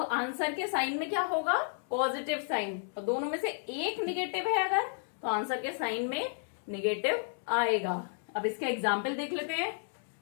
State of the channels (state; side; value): silent; right; digital silence